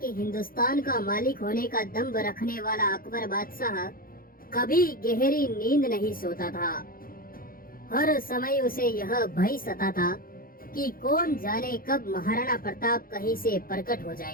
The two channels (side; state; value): right; late; 0.42 ms